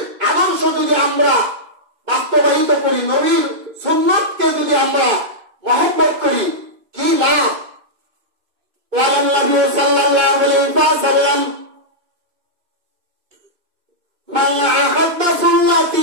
আদর্শ যদি আমরা বাস্তবায়িত করি, নবীর সুন্নাতকে যদি আমরা মহব্বত করি, কি লাভ? ওয়ালান নবী সাল্লাল্লাহু আলাইহি ওয়াসাল্লাম, মান আহাব্বা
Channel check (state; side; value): late; left; 2.5 ms